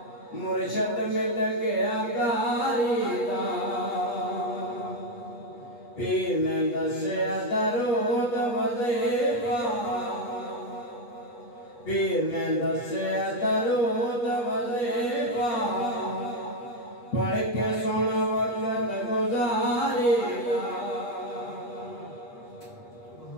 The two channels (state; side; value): late; right; 8.3 ms